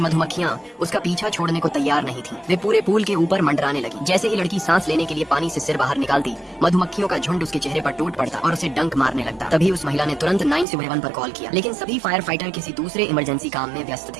मधुमक्खियाँ उसका पीछा छोड़ने को तैयार नहीं थी। वे पूरे पूल के ऊपर मंडराने लगी। जैसे ही लड़की सांस लेने के लिए पानी से सिर बाहर निकालती, मधुमक्खियों का झुंड उसके चेहरे पर टूट पड़ता और उसे डंक मारने लगता। तभी उस महिला ने तुरंत 911 पर कॉल किया, लेकिन सभी फायर फाइटर किसी दूसरे इमरजेंसी काम में व्यस्त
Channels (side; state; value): left; drops out; at 10.7 s